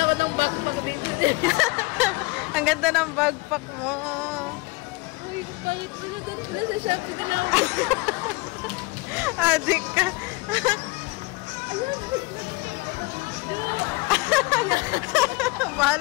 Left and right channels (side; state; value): right; quieter; 24.6 dB